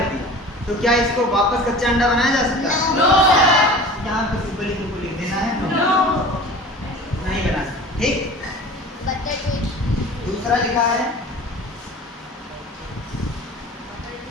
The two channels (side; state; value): both; normal; correlation 0.40